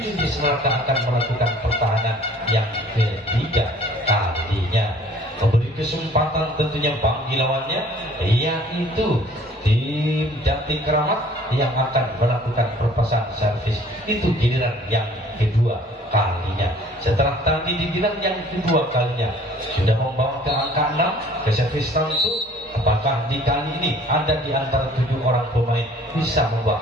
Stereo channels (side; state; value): both; normal; correlation 0.53